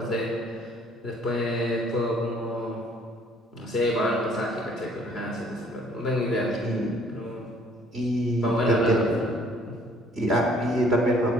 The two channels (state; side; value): normal; both; correlation 0.59